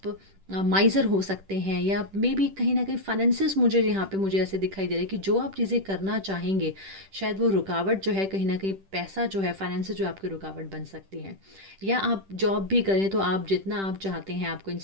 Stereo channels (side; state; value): left; late; 10 ms